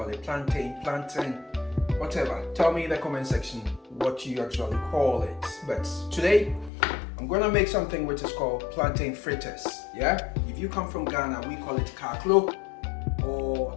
it plantain, plantain, whatever. Tell me in the comment section what you actually call it. But today, I'm gonna make something which is called plantain fritters. Yeah. If you come from Ghana, we call it kaklo or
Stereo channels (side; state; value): right; drops out; at 6.7 s